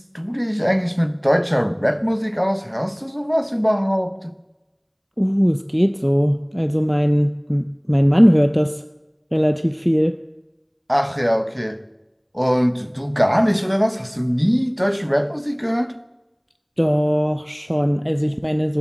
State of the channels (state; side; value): identical; both; correlation 1.00